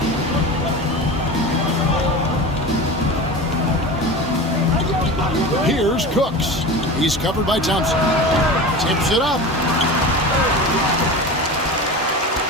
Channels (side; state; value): both; normal; correlation 0.30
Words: Here's Cooks. He's covered by Thompson. Tips it up.